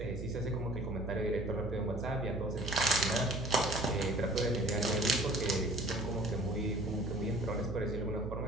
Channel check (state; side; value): noise; right; hum, 6 dB below the sound